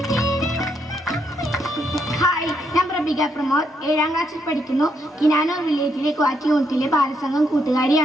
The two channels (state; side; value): normal; both; correlation 0.76